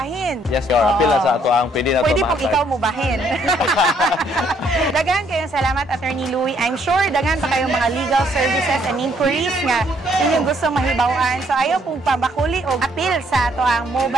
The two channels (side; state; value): both; normal; correlation 0.68